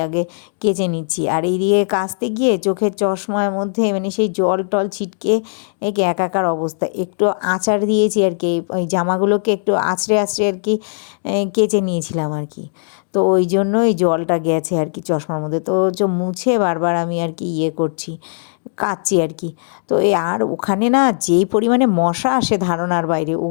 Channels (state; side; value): silent; right; digital silence